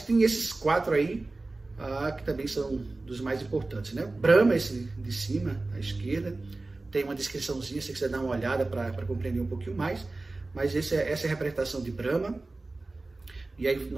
tem esses 4 aí, que também são dos mais importantes, né? Brahma, esse de cima, à esquerda, tem uma descriçãozinha, se você quiser dar uma olhada para compreender um pouquinho mais, mas essa é a representação de Brahma. E aí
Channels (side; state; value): left; quieter; 3.2 dB